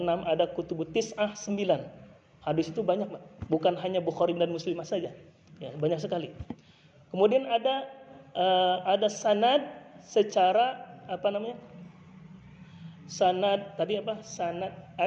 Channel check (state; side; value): identical; both; correlation 1.00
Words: 6 ada kutubus tis'ah 9. Hadis itu banyak, Pak. Bukan hanya Bukhari dan Muslim saja. Ya, banyak sekali. Kemudian ada sanad secara sanad tadi apa? Sanad